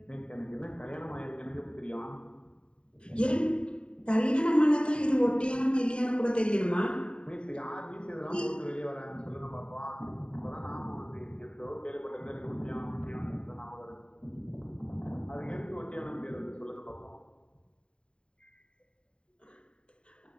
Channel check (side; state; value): right; late; 0.053 ms